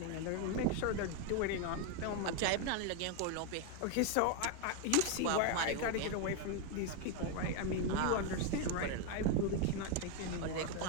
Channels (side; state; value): both; different; correlation 0.01